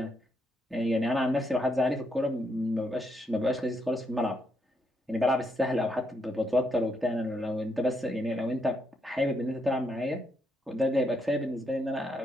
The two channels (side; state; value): both; normal; correlation 0.78